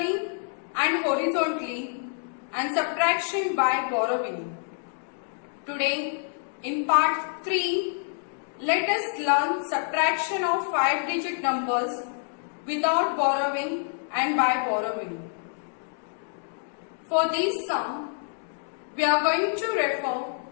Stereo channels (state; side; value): silent; right; digital silence